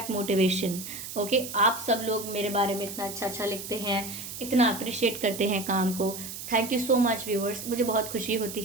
motivation. Okay, आप सब लोग मेरे बारे में इतना अच्छा अच्छा लिखते हैं, इतना अप्रिशिएट करते हैं काम को। Thank you so much viewers, मुझे बहुत खुशी होती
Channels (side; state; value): right; noise; hiss, 9 dB below the sound